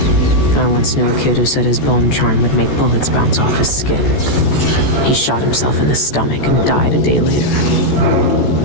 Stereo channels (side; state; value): right; late; 14 ms